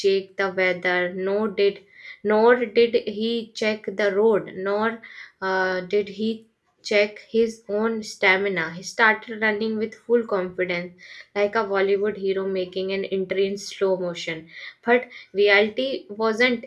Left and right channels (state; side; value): identical; both; correlation 1.00